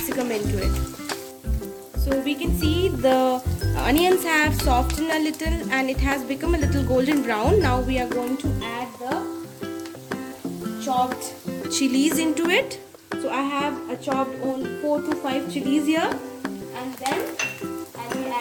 into it. So we can see the onions have softened a little and it has become a little golden brown. Now we are going to add the chopped chilies into it. So I have chopped only 4 to 5 chilies here, and then I will be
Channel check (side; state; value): both; identical; correlation 1.00